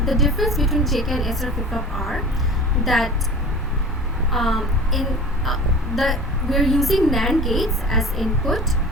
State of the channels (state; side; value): normal; both; correlation 0.38